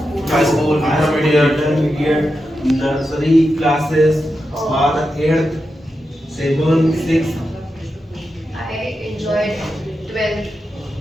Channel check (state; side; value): normal; both; correlation 0.89